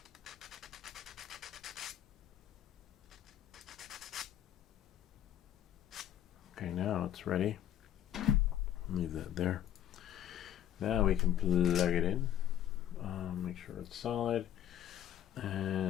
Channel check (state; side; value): quieter; right; 11.3 dB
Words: Okay, now it's ready. Leave that there. Now we can plug it in. Make sure it's solid.